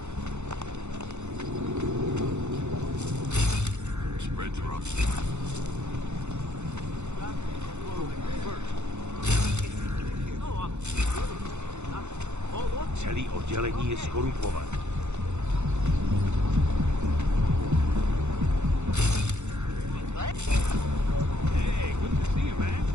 Spreads are up. Celý oddělení je skorumpované. Hey, good to see you, man.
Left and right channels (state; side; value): late; left; 0.83 ms